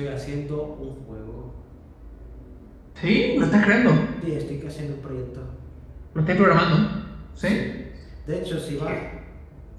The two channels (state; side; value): identical; both; correlation 1.00